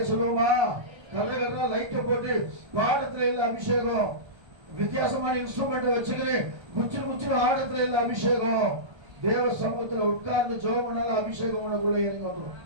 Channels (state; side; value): late; left; 1.3 ms